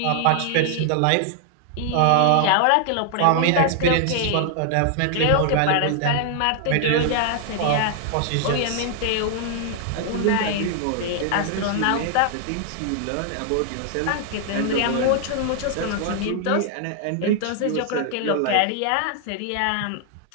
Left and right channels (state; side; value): different; both; correlation 0.00